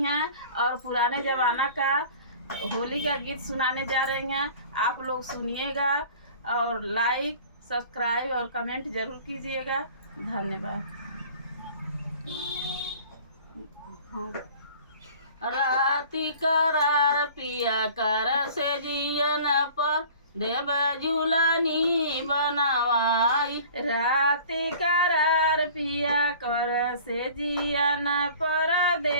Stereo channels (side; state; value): both; inverted; correlation -0.46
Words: हैं और पुराने जमाना का होली का गीत सुनाने जा रही हैं। आप लोग सुनिएगा और लाइक, सब्सक्राइब और कमेंट जरूर कीजिएगा। धन्यवाद। राती करार पिया कर से जियन पर देव झूलनी बनवाई। राती करार पिया कर से जियन पर